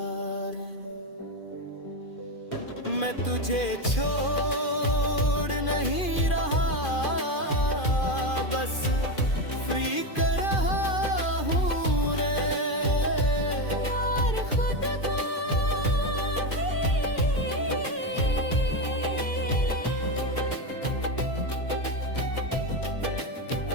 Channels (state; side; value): late; right; 2.4 ms